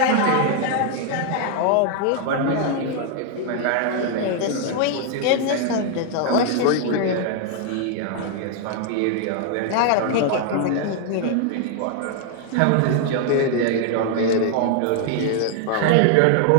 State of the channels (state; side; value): different; both; correlation 0.00